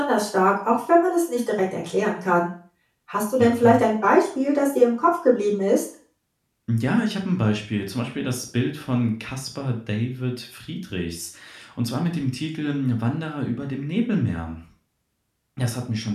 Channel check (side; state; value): both; identical; correlation 1.00